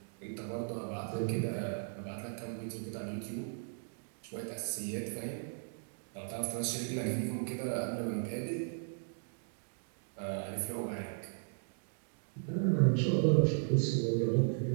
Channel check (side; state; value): left; silent; digital silence